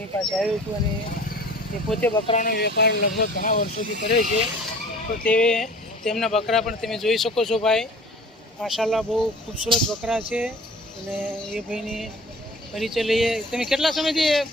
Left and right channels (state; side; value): normal; both; correlation 0.46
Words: પાસે આવ્યો છું અને એ પોતે બકરાનો વેપાર લગભગ ઘણા વર્ષોથી કરે છે. તો તેમના બકરા પણ તમે જોઈ શકો છો ભાઈ. માશાલ્લાહ બહુ ખૂબસૂરત બકરા છે અને એ ભાઈની પરિચય લઈએ. તમે કેટલા સમયથી